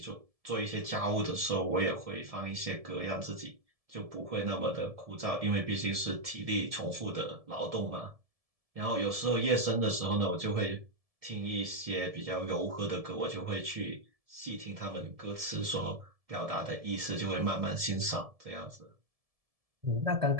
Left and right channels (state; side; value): late; left; 1.7 ms